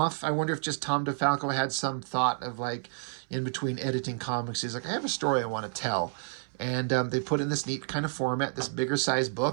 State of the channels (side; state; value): left; silent; 58 dB below the other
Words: I wonder if just Tom DeFalco had some thought of, like, in between editing comics, he's like, I have a story I want to tell. And they put in this neat kind of format, this bigger size